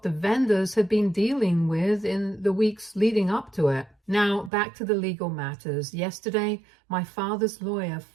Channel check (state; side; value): drops out; left; at 4.5 s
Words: the vendors had been dealing with in the weeks leading up to it. Now, back to the legal matters. Yesterday, my father's lawyer